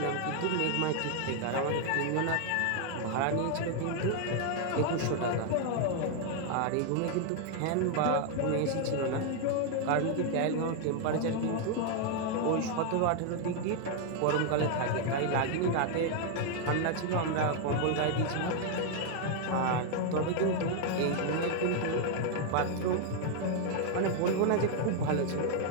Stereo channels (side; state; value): both; different; correlation 0.00